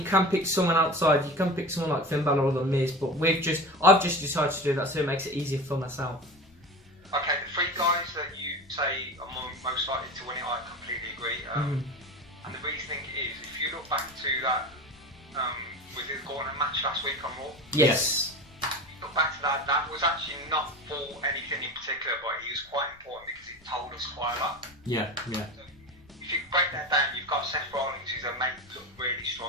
can pick someone outside. You can pick someone like Finn Balor or The Miz, but I've just decided to do that, so it makes it easier for myself. Okay, the 3 guys that you say are most likely to win it, I completely agree. And the reasoning is, if you look back to that, was it the Gauntlet match last week on Raw? Yes. Look back to that was actually not for anything in particular, but it was quite important because it told us quite a lot. Yeah. So if you break that down, you've got Seth Rollins, who's made look really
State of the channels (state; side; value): noise; left; rumble, 27 dB below the sound